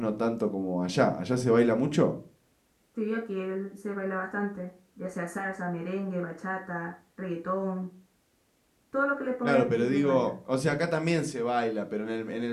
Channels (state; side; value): identical; both; correlation 1.00